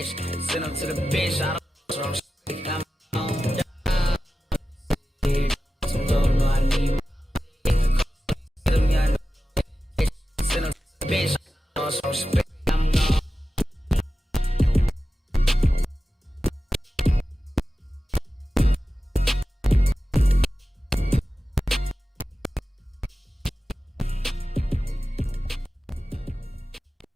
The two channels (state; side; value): normal; both; correlation 0.94